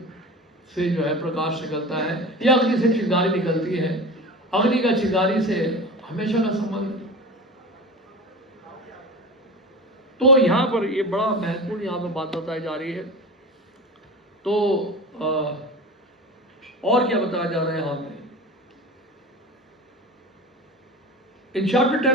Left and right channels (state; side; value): normal; both; correlation 0.31